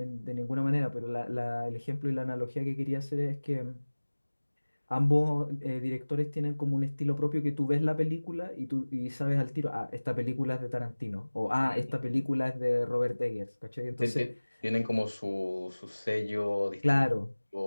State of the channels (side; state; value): both; inverted; correlation -1.00